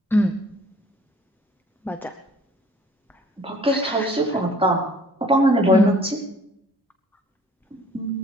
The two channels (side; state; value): both; normal; correlation 0.55